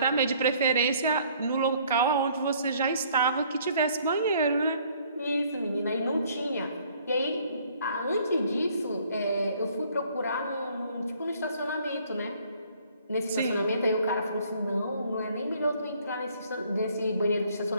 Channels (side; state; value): both; inverted; correlation -0.60